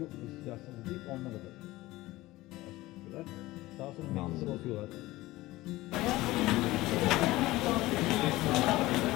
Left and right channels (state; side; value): quieter; right; 18.4 dB